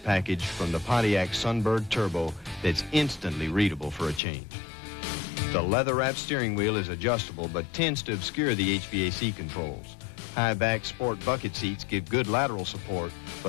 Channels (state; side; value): drops out; right; at 4.2 s